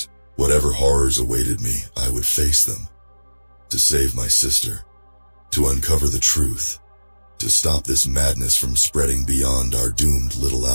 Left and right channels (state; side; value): inverted; both; correlation -1.00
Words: Whatever horrors awaited me, I would face them. To save my sister, to uncover the truth, to stop this madness from spreading beyond our doomed little